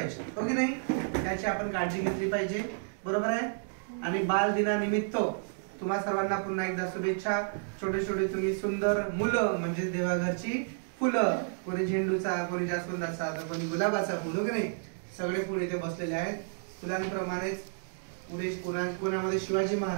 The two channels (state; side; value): silent; left; digital silence